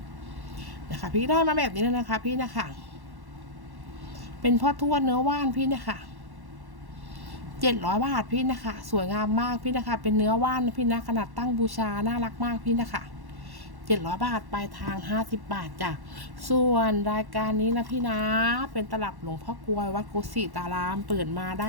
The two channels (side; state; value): left; late; 1.1 ms